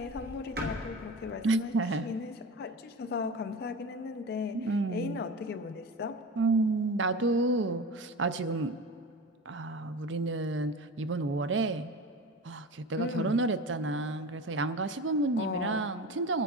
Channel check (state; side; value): normal; both; correlation 0.30